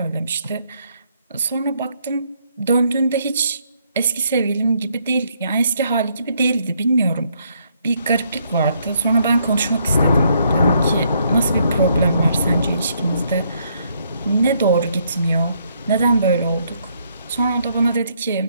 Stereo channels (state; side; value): inverted; both; correlation -0.72